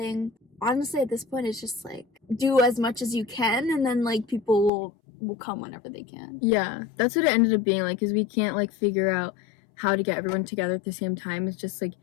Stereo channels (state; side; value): drops out; right; at 4.7 s